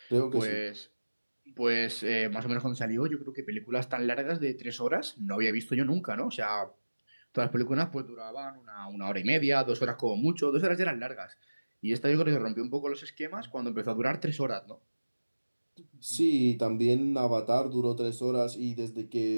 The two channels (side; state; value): both; inverted; correlation -1.00